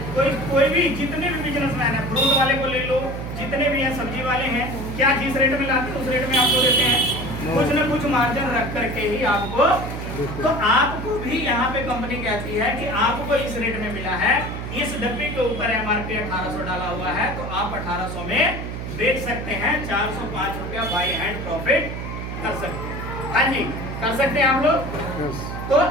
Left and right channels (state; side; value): noise; right; hum, 6 dB below the sound